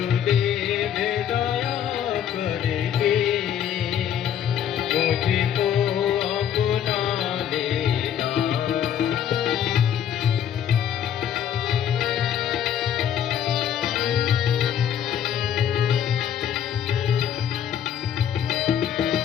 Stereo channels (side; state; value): right; quieter; 9.4 dB